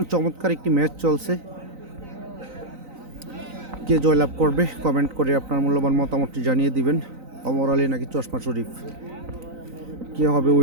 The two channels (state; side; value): late; left; 3.9 ms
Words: চমৎকার একটি ম্যাচ চলছে। কে জয়লাভ করবে কমেন্ট করে আপনার মূল্যবান মতামতটি জানিয়ে দিবেন। ওমর আলী নাকি চশমা শরীফ, কে হবে